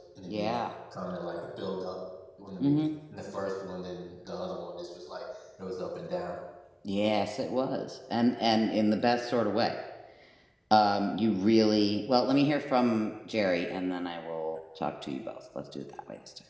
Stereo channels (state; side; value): identical; both; correlation 1.00